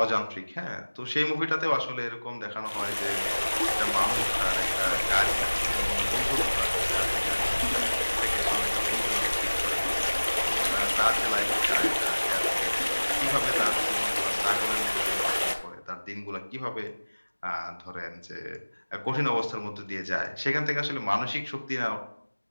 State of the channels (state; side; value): inverted; both; correlation -1.00